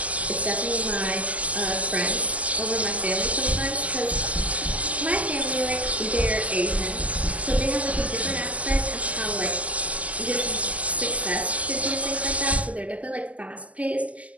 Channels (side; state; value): left; late; 0.070 ms